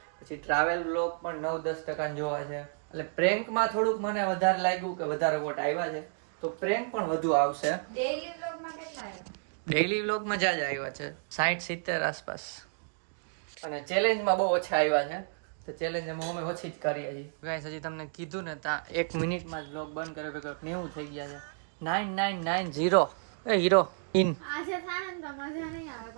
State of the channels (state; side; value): silent; left; digital silence